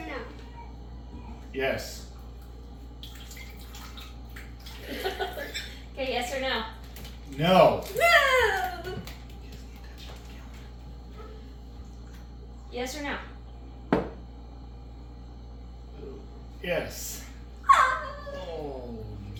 Yes. Okay, yes or no? No. No! Yes or no? Yes. Oh,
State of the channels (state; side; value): identical; both; correlation 1.00